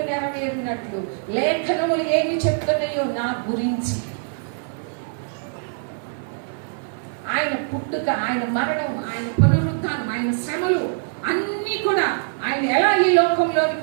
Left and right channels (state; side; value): silent; left; 63 dB below the other